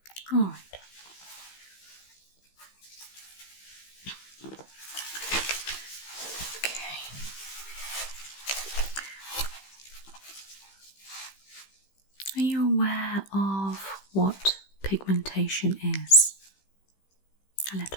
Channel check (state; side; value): late; right; 15 ms